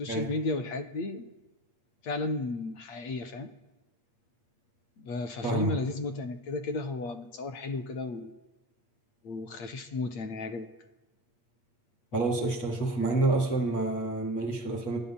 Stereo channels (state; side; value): late; right; 8.5 ms